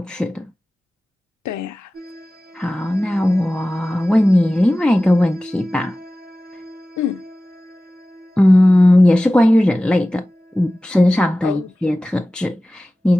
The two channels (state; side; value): normal; both; correlation 0.97